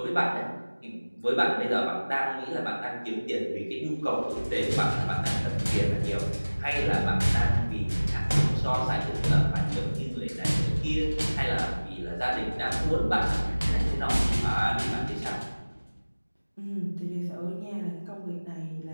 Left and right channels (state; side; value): inverted; both; correlation -1.00